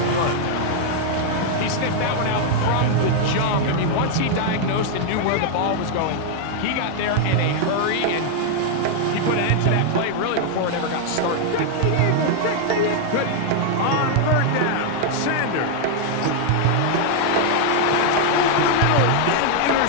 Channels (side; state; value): both; different; correlation 0.00